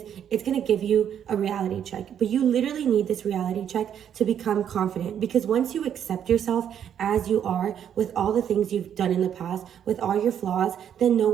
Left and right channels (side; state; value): left; quieter; 9.1 dB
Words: it's going to give you a reality check. But you literally need this reality check to become confident, because once you accept yourself as you are, with all the things you've done in the past, with all your flaws, then no